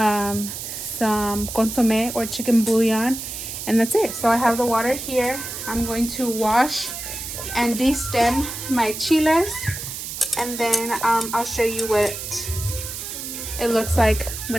some consomme or chicken bouillon, and that's it. So I have the water here. I'm going to wash and de-stem my chiles, and then I'll show you what it looks like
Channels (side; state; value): right; noise; hiss, 7 dB below the sound